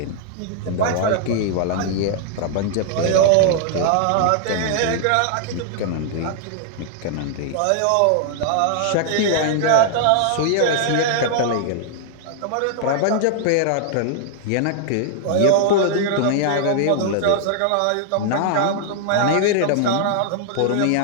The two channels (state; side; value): different; both; correlation -0.01